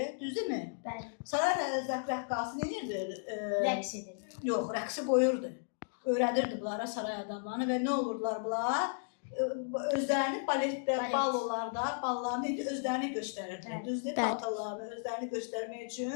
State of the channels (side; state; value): right; silent; digital silence